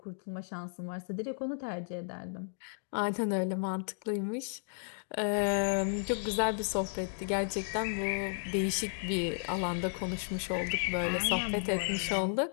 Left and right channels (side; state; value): right; silent; digital silence